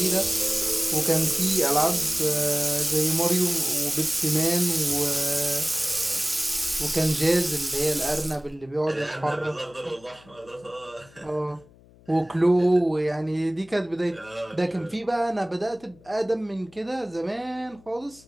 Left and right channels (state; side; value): noise; left; hum, 26 dB below the sound